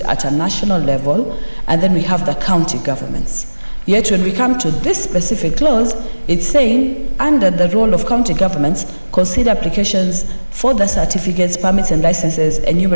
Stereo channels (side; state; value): both; inverted; correlation -1.00